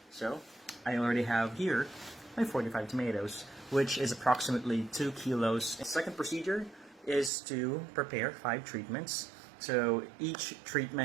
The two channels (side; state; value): left; drops out; at 7.3 s